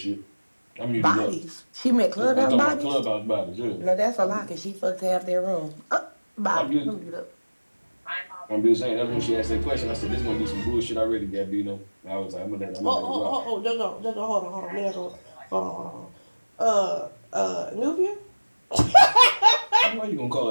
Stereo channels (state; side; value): inverted; both; correlation -1.00